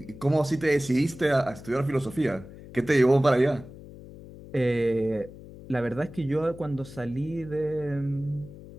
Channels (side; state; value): left; noise; hum, 16 dB below the sound